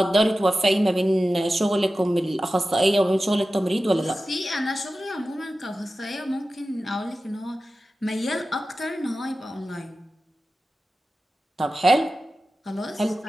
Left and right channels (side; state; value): both; normal; correlation 0.94